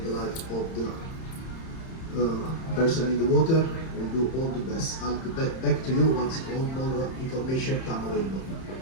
the life of the person in the water. We'll do all the best. I'll get back to you once all more information comes available.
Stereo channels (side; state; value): right; late; 31 ms